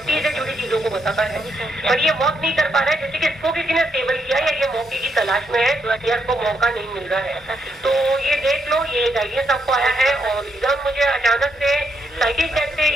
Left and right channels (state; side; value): normal; both; correlation 0.79